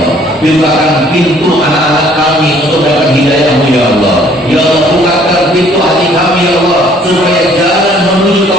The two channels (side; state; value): both; normal; correlation 0.59